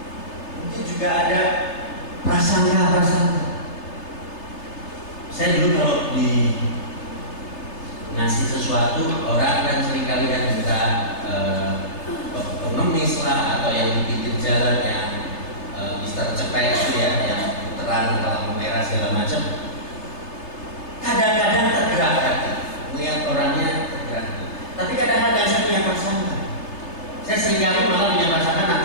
Mungkin juga ada prasangka. Saya dulu kalau di ngasih sesuatu, orang kan seringkali kan minta pengemis lah, atau yang di pinggir jalan yang Mister Cepet itu ya, yang terang lampu merah segala macam. Kadang-kadang tergerak hati melihat orangnya tergerak. Tapi kadang-kadang saya punya prasangka. Saya seringkali malah punya prasangka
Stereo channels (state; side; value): late; right; 3.3 ms